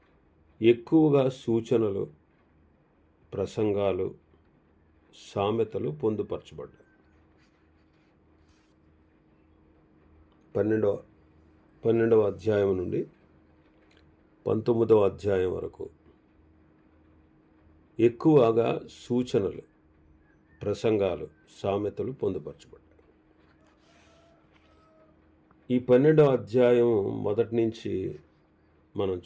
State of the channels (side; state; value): both; identical; correlation 1.00